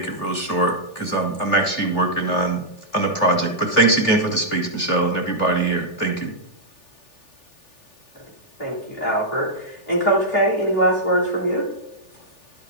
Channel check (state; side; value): late; right; 3.4 ms